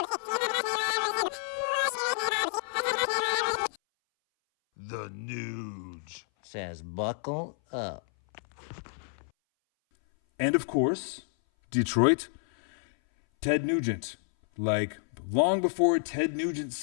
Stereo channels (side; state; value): right; silent; 58 dB below the other